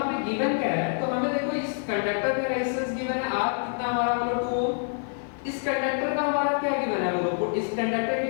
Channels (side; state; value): right; silent; 60 dB below the other